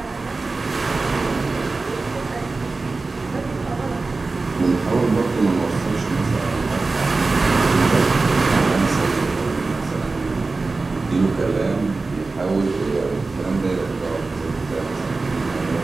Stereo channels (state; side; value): quieter; left; 3.7 dB